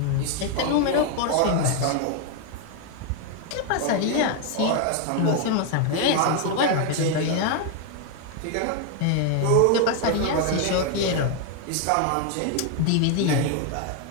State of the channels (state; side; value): different; both; correlation 0.01